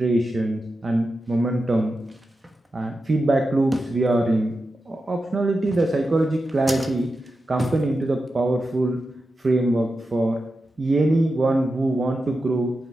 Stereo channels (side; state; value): both; normal; correlation 0.90